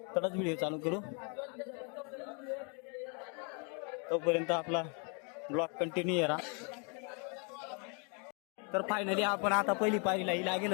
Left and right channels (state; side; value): quieter; right; 36.8 dB